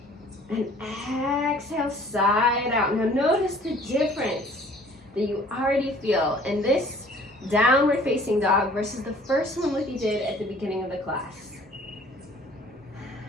And exhale, side out. Now notice the difference that you already feel in this downward facing dog versus the first one like you did at the beginning of the class.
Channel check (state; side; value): normal; both; correlation 0.53